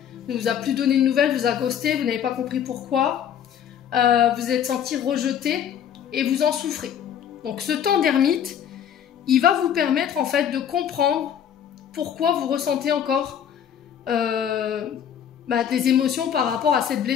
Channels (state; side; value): quieter; right; 9.0 dB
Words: ne vous a plus donné de nouvelles, vous a ghosté, vous n'avez pas compris pourquoi, vous êtes senti rejeté et vous en souffrez. Donc ce temps d'ermite, il va vous permettre en fait de comprendre pourquoi vous ressentez encore des émotions par rapport à cette